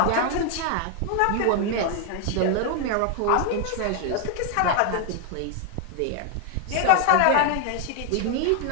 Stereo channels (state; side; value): different; both; correlation 0.00